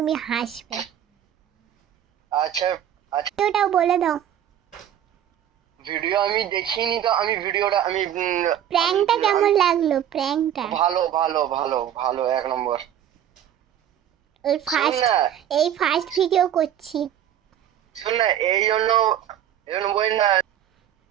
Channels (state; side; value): quieter; left; 10.6 dB